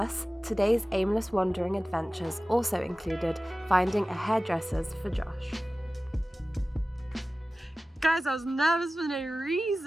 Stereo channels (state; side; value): normal; both; correlation 0.96